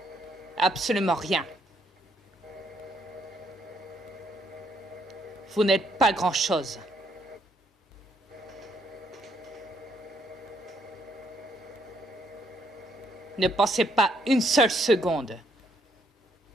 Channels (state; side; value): normal; both; correlation 0.71